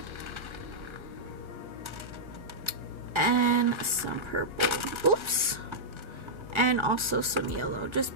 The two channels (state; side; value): late; left; 1.4 ms